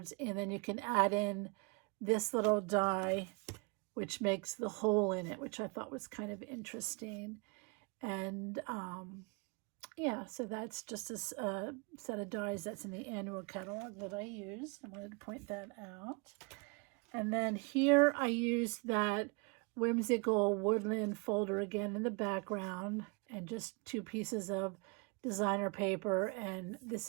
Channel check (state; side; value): quieter; left; 31.7 dB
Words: and then you can add in this little die, which makes the hole in it, which I thought was kind of interesting. And yeah, so that's just a set of dies that's in the annual catalog that I used. I wanted to point that out. And then here I used that Whimsical Woodland folder again in the background, and just 2 pieces of designer paper. And this